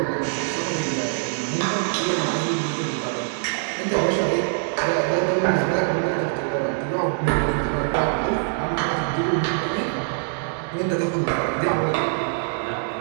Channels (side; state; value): left; silent; digital silence